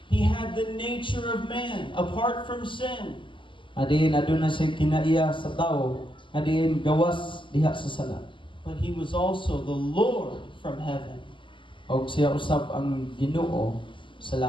He had the nature of man apart from sin. Adiin aduna siya kinaiya sa tao nga diin gawas diha sa sala. But He was also the Lord from heaven. Og siya usab ang Ginoo sa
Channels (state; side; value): late; right; 0.24 ms